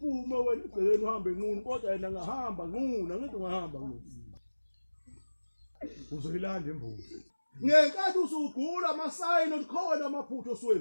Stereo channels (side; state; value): both; inverted; correlation -1.00